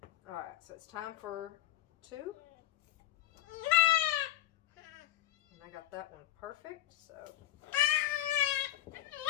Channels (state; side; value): quieter; right; 14.3 dB